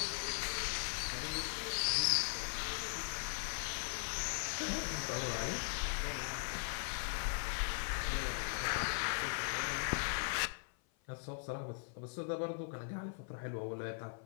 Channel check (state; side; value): silent; right; 51 dB below the other